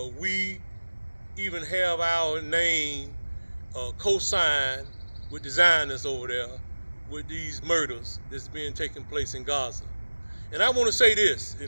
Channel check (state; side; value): inverted; both; correlation -1.00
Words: we even have our name co-signed with the Zionists over there with these murders that's being taking place in Gaza. And I want to say this,